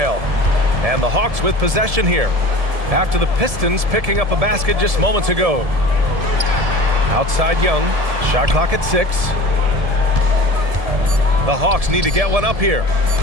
And the Hawks with possession here. After the Pistons picking up a basket just moments ago. Outside Young. Shot clock at 6. The Hawks need to get one up here.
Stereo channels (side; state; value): left; late; 1.7 ms